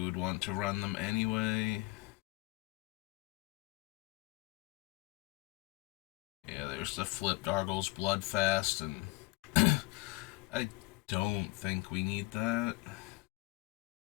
would want to run them anyway. Yeah, there's the flipped Argos Bloodfast, and I don't think we need that.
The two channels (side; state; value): right; quieter; 21.7 dB